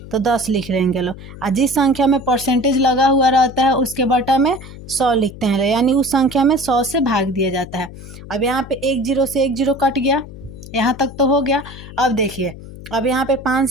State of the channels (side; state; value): left; noise; hum, 15 dB below the sound